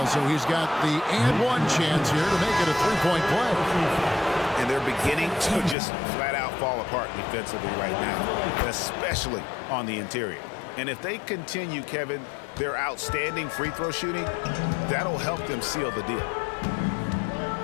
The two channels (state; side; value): drops out; right; at 5.8 s